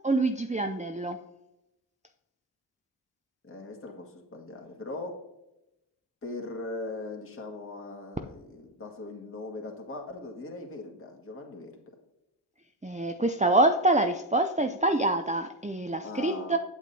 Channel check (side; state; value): both; normal; correlation 0.14